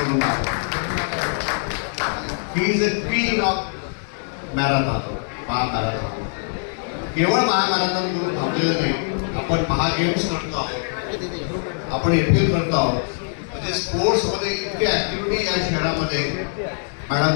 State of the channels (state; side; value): silent; right; 64 dB below the other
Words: ही is a queen of marathon. महामॅरेथॉन केवळ महामॅरेथॉन करून थांबलेलं नाही, आपण महागेम्स करतो आहोत, आपण एपीएल करतो आहोत. म्हणजे स्पोर्ट्समध्ये इतकी ऍक्टिव्हिटी या शहरामध्ये